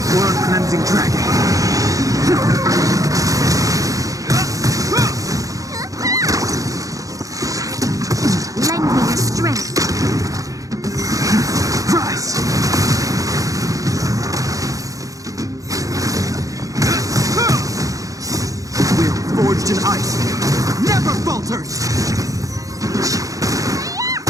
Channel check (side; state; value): left; late; 0.17 ms